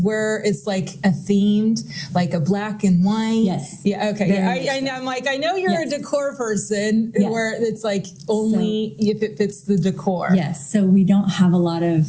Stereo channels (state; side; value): identical; both; correlation 1.00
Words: it's like a themed, like a black and white. Yes. Yeah. Okay. I know. I'm like, I know you're a decor person where it's like only if it fits the decor. Yes. So we don't have a lot of